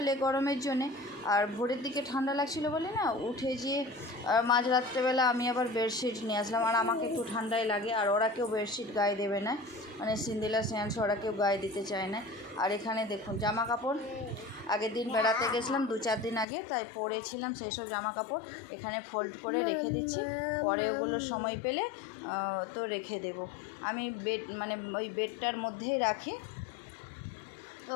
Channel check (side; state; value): right; drops out; at 16.4 s